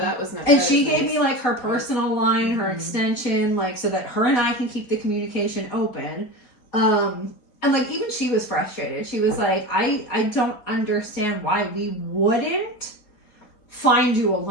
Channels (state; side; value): late; right; 4.4 ms